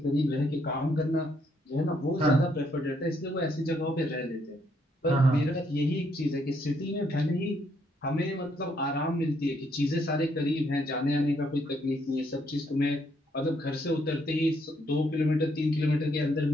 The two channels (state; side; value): normal; both; correlation 0.72